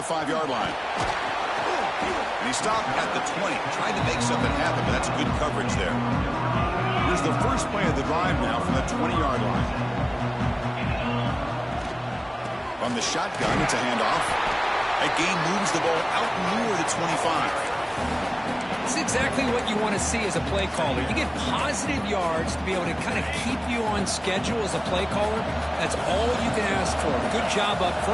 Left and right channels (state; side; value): identical; both; correlation 1.00